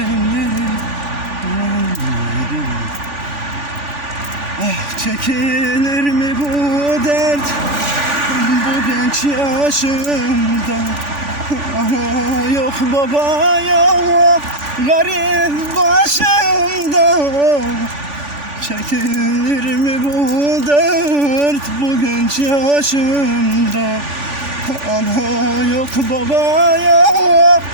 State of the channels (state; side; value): late; left; 3.5 ms